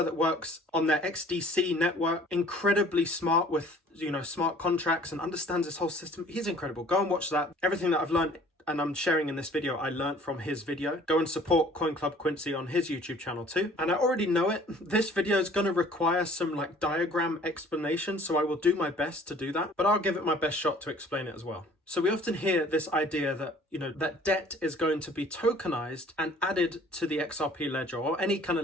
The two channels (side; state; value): both; normal; correlation 0.53